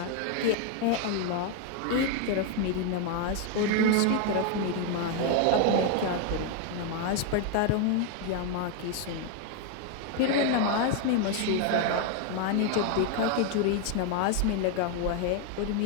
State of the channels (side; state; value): both; different; correlation 0.01